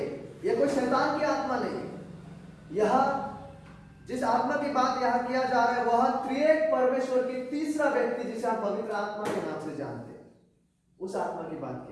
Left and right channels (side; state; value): both; identical; correlation 1.00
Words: यह कोई शैतान की आत्मा नहीं है। यह जिस आत्मा की बात यहां किया जा रहा है वह त्रिएक परमेश्वर की तीसरा व्यक्ति, जिसे आप पवित्र आत्मा के नाम से जानते हैं, उस आत्मा की बात